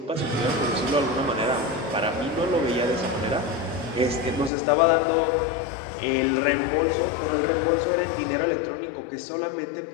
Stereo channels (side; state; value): right; drops out; at 4.5 s